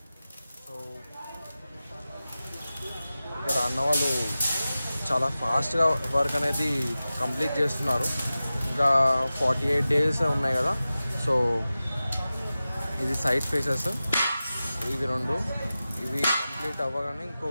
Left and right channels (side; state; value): both; inverted; correlation -0.95